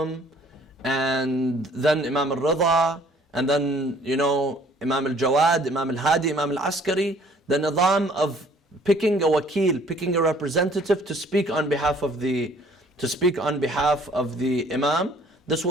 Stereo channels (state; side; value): normal; both; correlation 0.57